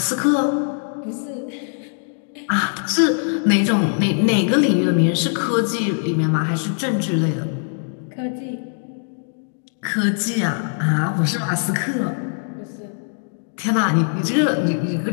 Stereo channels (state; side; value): silent; right; digital silence